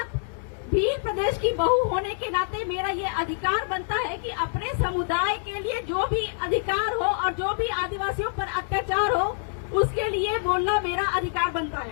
भील प्रदेश की बहू होने के नाते मेरा ये अधिकार बनता है कि अपने समुदाय के लिए जो भी अधिकार हो और जो भी आदिवासियों पर अत्याचार हो उसके लिए बोलना मेरा अधिकार बनता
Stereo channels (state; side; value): silent; right; digital silence